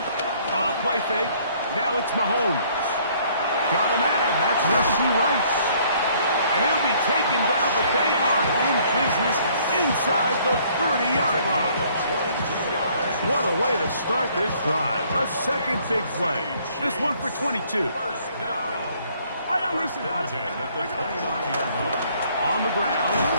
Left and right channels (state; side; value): inverted; both; correlation -0.61